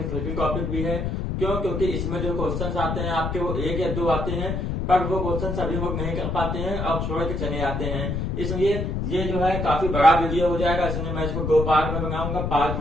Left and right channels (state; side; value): noise; left; rumble, 2 dB below the sound